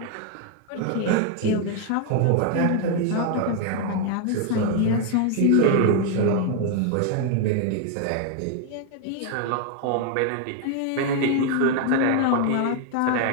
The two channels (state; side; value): different; both; correlation 0.00